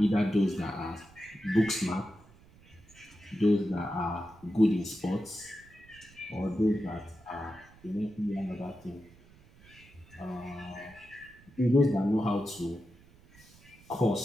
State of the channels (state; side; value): noise; right; rumble, 25 dB below the sound